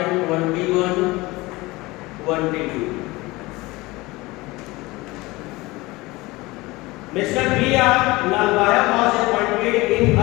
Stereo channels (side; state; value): right; quieter; 21.6 dB